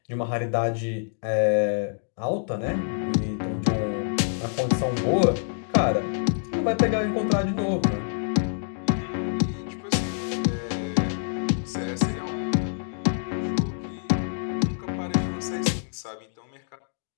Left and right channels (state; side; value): silent; right; digital silence